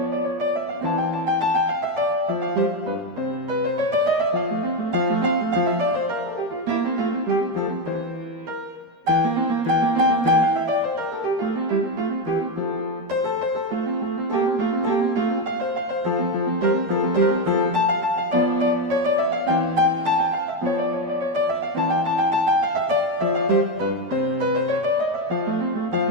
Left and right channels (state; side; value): late; left; 13 ms